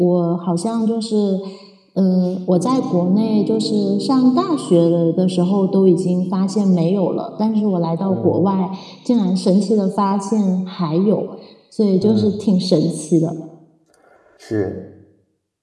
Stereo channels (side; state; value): both; identical; correlation 1.00